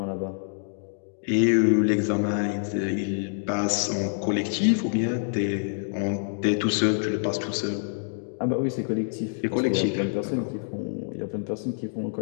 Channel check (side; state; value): right; silent; digital silence